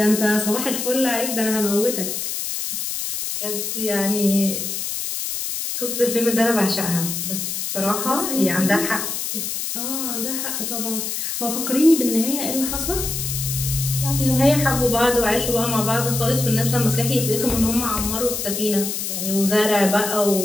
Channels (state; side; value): noise; left; hiss, 3 dB below the sound